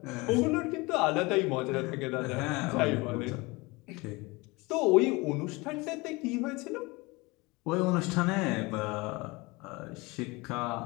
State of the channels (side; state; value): right; quieter; 24.4 dB